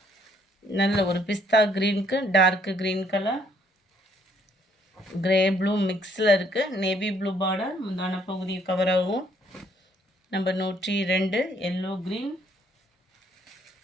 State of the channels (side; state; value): both; normal; correlation 0.66